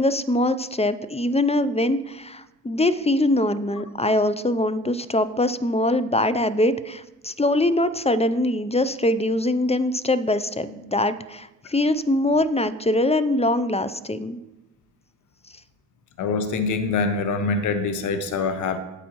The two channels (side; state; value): both; normal; correlation 0.47